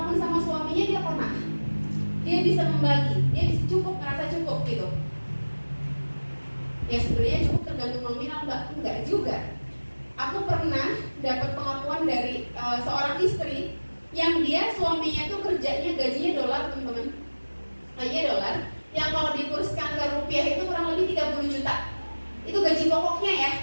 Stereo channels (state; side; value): inverted; both; correlation -1.00